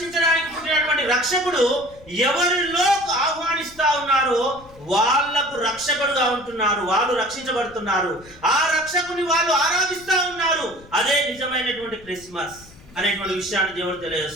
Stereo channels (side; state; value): left; noise; rumble, 23 dB below the sound